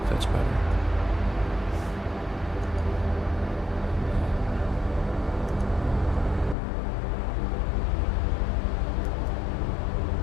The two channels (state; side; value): drops out; right; at 6.6 s